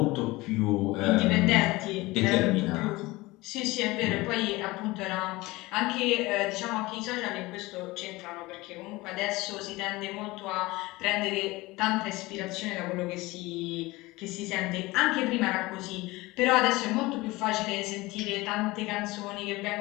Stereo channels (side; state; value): right; quieter; 21.0 dB